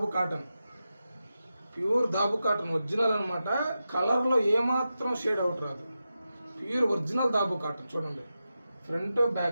దాబు కాటన్ ఒరిజినల్ అనమాట. కలర్లో ఏమాత్రం షేడ్ అవుట్ రాదు, ప్యూర్ ఒరిజినల్ దాబు కాటన్. చూడండి ఫ్రంట్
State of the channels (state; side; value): inverted; both; correlation -0.91